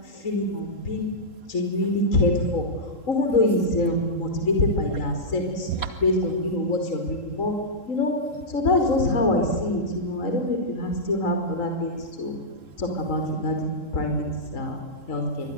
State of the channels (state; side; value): late; right; 3.8 ms